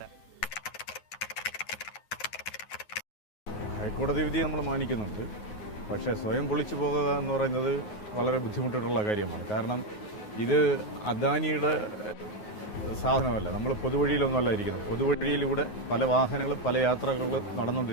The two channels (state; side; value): late; right; 9.4 ms